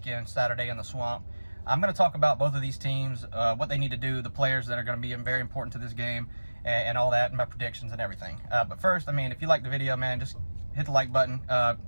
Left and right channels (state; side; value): inverted; both; correlation -1.00